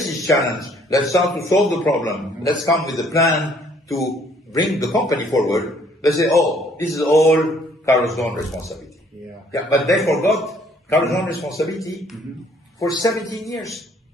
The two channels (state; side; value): normal; both; correlation 0.62